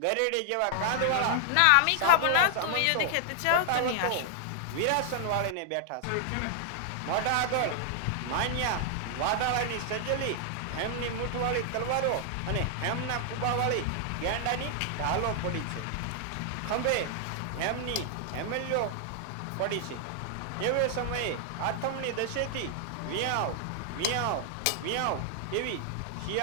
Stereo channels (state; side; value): different; both; correlation 0.00